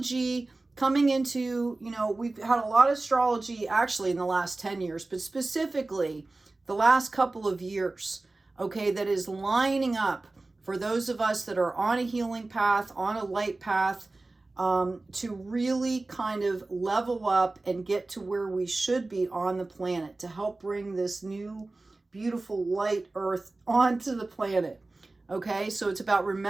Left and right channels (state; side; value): quieter; left; 3.2 dB